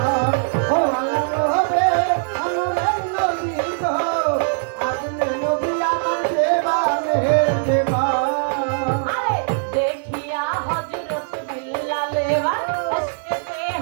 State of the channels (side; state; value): left; silent; 65 dB below the other